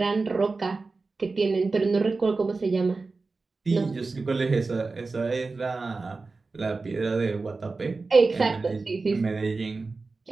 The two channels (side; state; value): left; quieter; 3.9 dB